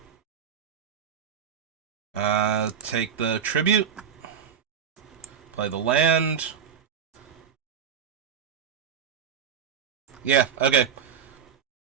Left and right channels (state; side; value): quieter; left; 7.8 dB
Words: Take the tribute. Play the land. Yeah, okay.